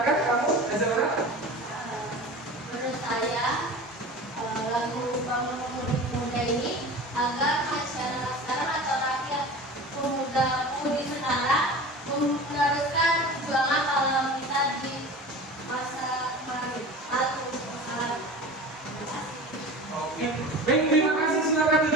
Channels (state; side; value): normal; both; correlation 0.35